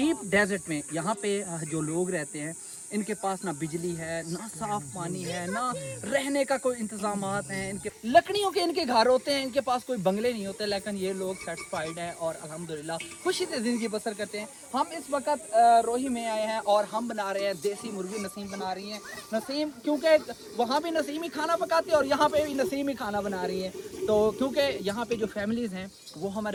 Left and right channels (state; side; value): identical; both; correlation 1.00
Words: डेजर्ट में। यहाँ पे जो लोग रहते हैं इनके पास ना बिजली है, ना साफ पानी है, ना रहने का कोई इंतजामात हैं इनके। लकड़ियों के इनके घर होते हैं, इनके पास कोई बंगले नहीं होते, लेकिन ये लोग सेटिस्फाइड हैं और अल्हम्दुलिल्लाह खुशी से ज़िंदगी बसर करते हैं। हम इस वक्त रोही में आए हैं और हम बना रहे हैं देसी मुर्गी। नसीम बना रही हैं, नसीम क्योंकि वहाँ भी नसीम ही खाना पकाती है और यहाँ पे भी नसीम ही खाना बना रही हैं। तो क्योंकि यहाँ पे जो फैमिलीज़ हैं वो